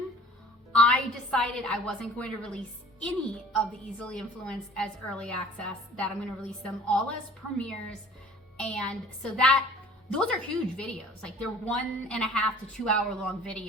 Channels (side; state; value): both; normal; correlation 0.47